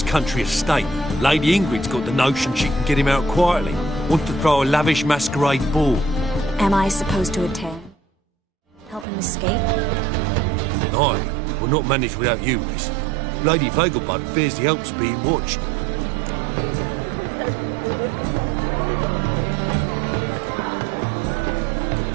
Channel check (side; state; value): left; drops out; at 9.1 s